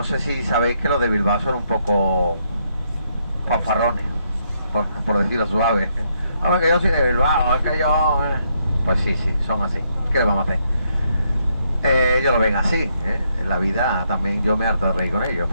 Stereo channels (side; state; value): both; inverted; correlation -0.75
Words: sé si sabéis que los de Bilbao son un poco fanfarrones, por decirlo suave. Hombre, que yo soy de Bilbao, es que yo... Pues sí, son así. ¿Qué le vamos a hacer? Ellos lo ven así, ¿eh? En la vida también yo me harto de reír con ellos,